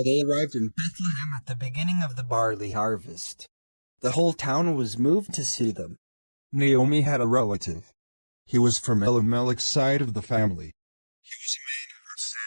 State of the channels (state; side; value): inverted; both; correlation -1.00